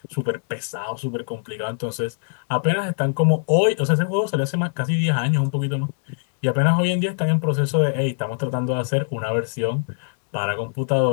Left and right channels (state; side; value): silent; right; digital silence